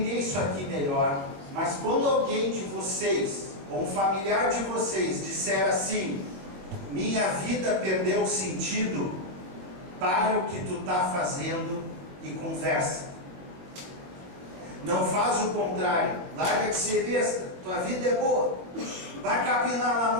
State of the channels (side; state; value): left; late; 22 ms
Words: isso aqui melhor. Mas quando alguém de vocês, ou um familiar de vocês, disser assim: minha vida perdeu o sentido, para o que tu está fazendo e conversa. Não faz o contrário. Larga de ser besta. Tua vida é boa. Vai capinar lá